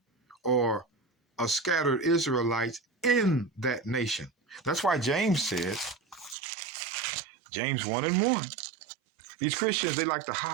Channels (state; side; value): drops out; left; at 6.4 s